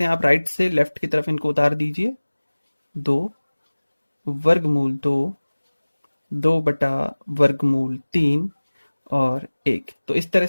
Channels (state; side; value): inverted; both; correlation -1.00